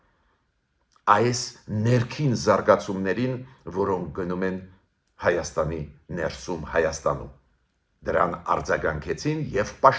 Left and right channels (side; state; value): both; identical; correlation 1.00